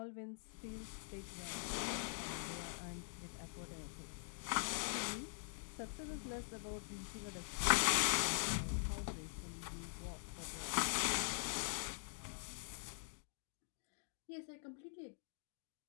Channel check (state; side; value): silent; right; digital silence